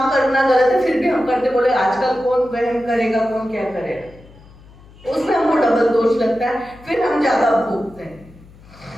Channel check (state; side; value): noise; left; hum, 23 dB below the sound